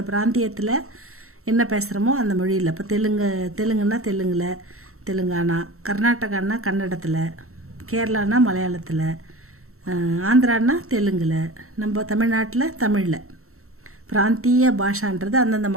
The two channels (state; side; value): late; left; 0.63 ms